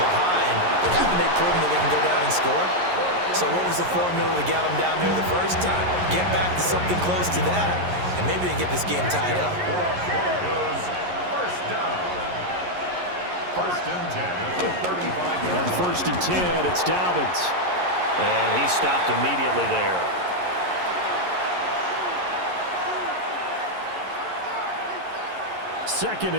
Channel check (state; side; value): late; left; 11 ms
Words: but haven't they proven that they can go down and score? So what was the formula to get them down there the first time? Get back to something close to that, and maybe they can get this game tied up. First down. First and 10 at the 35. On first and 10, it's Dobbins. And he stopped immediately there. Second